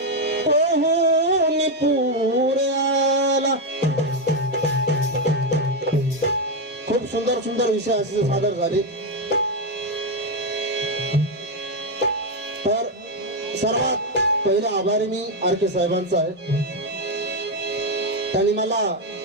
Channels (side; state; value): both; normal; correlation 0.05